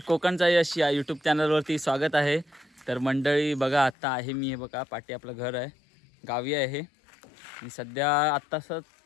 कोकणचा यश या यूट्यूब चॅनलवरती स्वागत आहे. तर मंडळी बघा, आत्ता आहे मी, हे बघा पाठी आपलं घर आहे, गावी आहे आणि सध्या आत्ताच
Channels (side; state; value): right; drops out; at 4.0 s